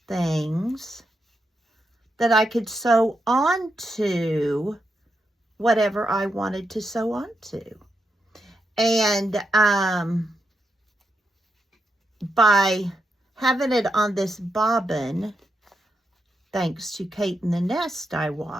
things that I could sew onto whatever I wanted to sew onto. And by having it on this bobbin, thanks to Kate in the Nest I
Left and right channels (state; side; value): normal; both; correlation 0.84